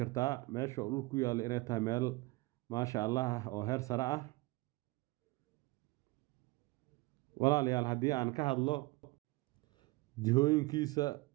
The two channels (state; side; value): quieter; left; 22.3 dB